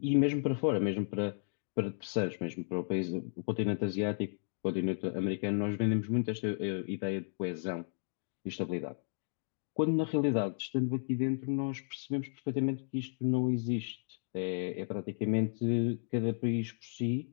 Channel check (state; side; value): silent; right; digital silence